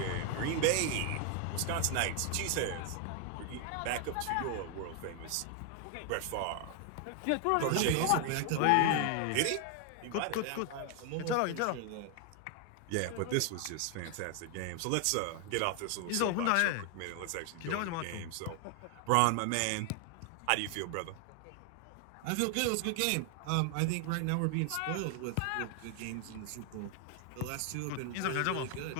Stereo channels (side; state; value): both; different; correlation 0.00